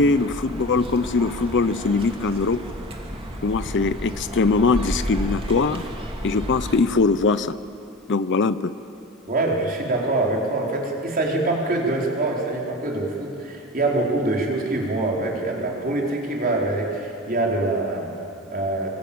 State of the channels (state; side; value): normal; both; correlation 0.31